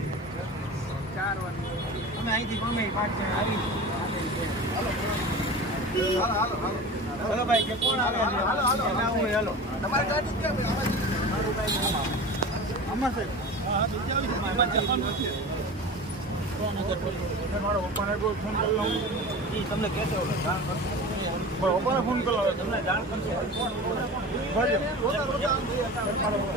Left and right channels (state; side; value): normal; both; correlation 0.33